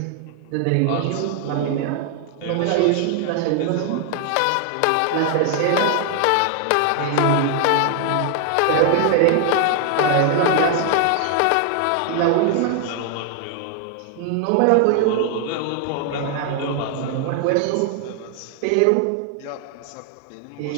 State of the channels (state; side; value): different; both; correlation 0.00